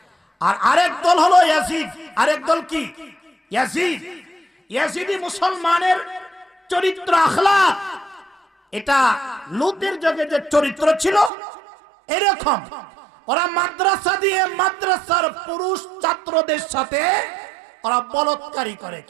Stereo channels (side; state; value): left; drops out; at 11.3 s